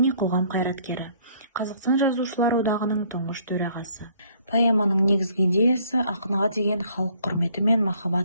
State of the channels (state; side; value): inverted; both; correlation -0.61